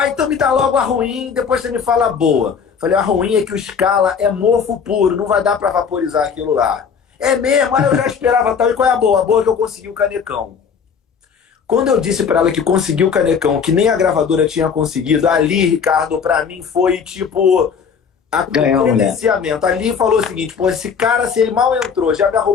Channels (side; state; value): right; quieter; 6.5 dB